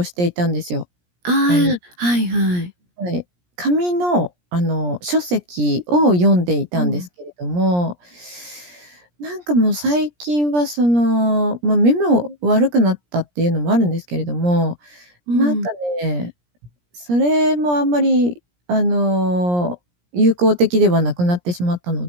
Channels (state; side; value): late; left; 17 ms